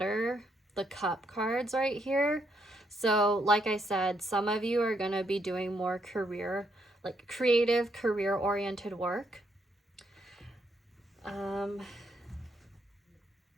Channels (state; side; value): normal; both; correlation 0.75